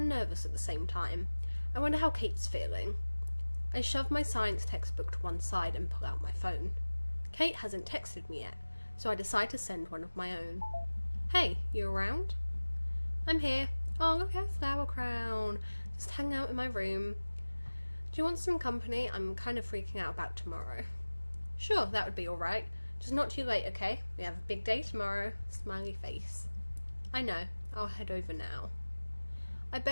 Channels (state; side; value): inverted; both; correlation -1.00